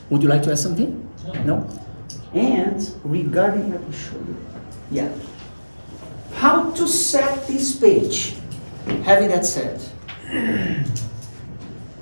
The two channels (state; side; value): inverted; both; correlation -1.00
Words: would you like to add something? No? And regarding, let me show you. Yeah. How to set this page? Having that said,